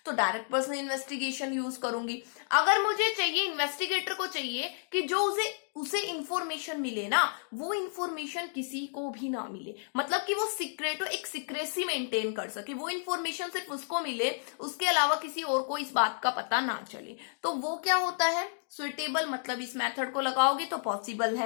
तो डायरेक्ट पर्सन इन्वेस्टिगेशन यूज करूंगी। अगर मुझे चाहिए, इन्वेस्टिगेटर को चाहिए कि जो उसे इंफॉर्मेशन मिले ना, वो इंफॉर्मेशन किसी को भी ना मिले, मतलब कि वो सीक्रेट हो, एक सीक्रेसी मेंटेन कर सके, वो इंफॉर्मेशन सिर्फ उसको मिले, उसके अलावा किसी और को इस बात का पता ना चले, तो वो क्या होता है, सुइटेबल, मतलब इस मेथड को लगाओगे तो पॉसिबल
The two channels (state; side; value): silent; right; digital silence